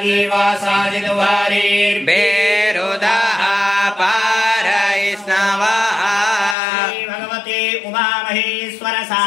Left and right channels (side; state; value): right; drops out; at 6.6 s